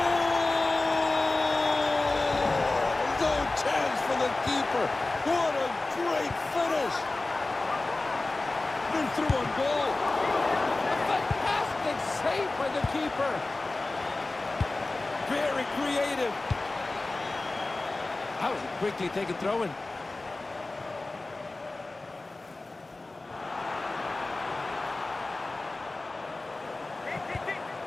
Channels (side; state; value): right; quieter; 3.1 dB